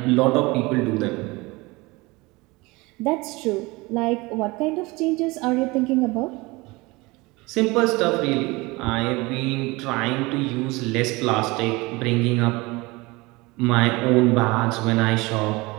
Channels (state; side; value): quieter; left; 23.3 dB